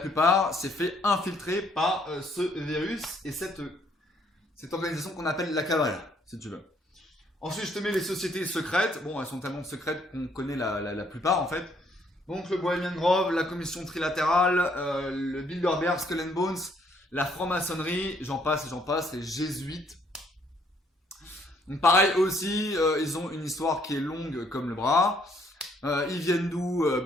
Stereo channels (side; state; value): both; normal; correlation 0.67